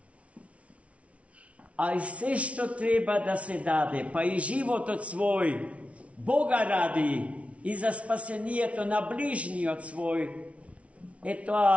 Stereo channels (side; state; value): left; late; 0.064 ms